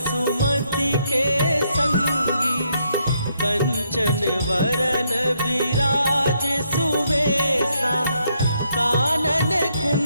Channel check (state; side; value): inverted; both; correlation -0.75